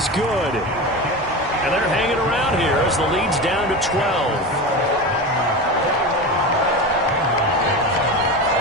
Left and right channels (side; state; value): both; normal; correlation 0.25